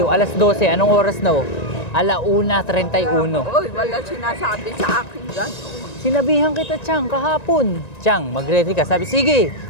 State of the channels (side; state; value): right; late; 1.9 ms